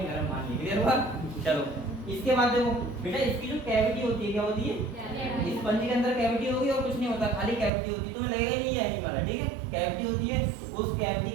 गर्म पानी है। क्लियर हुआ? चलो इसके बाद देखो बेटा, इसकी जो कैविटी होती है, क्या होती है? स्पंज के अंदर कैविटी होगी और कुछ नहीं होता, खाली कैविटी होती है। तुम्हें लगेगा ही नहीं है एनिमल है, ठीक है। कैविटी होती है, उस कैविटी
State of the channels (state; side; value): drops out; left; at 7.7 s